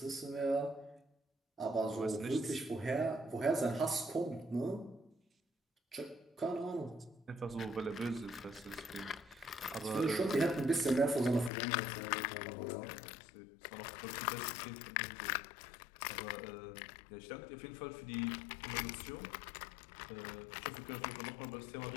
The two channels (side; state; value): right; drops out; at 11.5 s